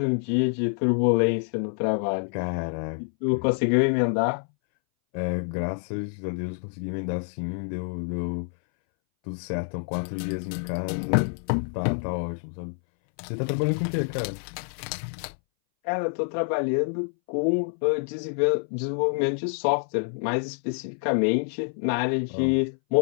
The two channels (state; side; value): silent; right; 60 dB below the other